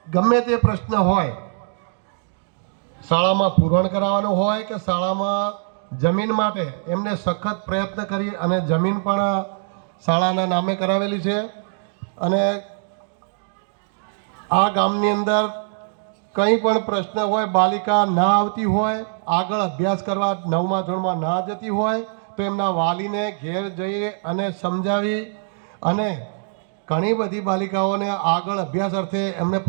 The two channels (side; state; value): left; silent; digital silence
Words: ગમે તે પ્રશ્ન હોય, શાળામાં પૂરણ કરાવવાનું હોય કે શાળામાં જમીન માટે એમને સખત પ્રયત્ન કરી અને જમીન પણ શાળાના નામે કરાવેલી છે. અને આ ગામની અંદર કંઈ પણ પ્રશ્ન હોય, બાલિકા ના આવતી હોય, આગળ અભ્યાસ કરવા 9મા ધોરણમાં ના જતી હોય તો એમના વાલીને ઘેર જઈ અને સમજાવી અને ઘણી બધી બાલિકાઓને આગળ અભ્યાસ અર્થે એમને